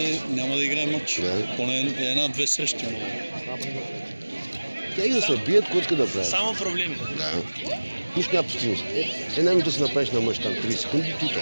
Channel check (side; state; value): both; inverted; correlation -1.00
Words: няма да играе матч. Поне една-две срещи. Тя и да се бият, кой иска да прави. Само проблеми. Да. Нищо няма постигност. Една минута си направиш на мъж там 30 секунди, тута.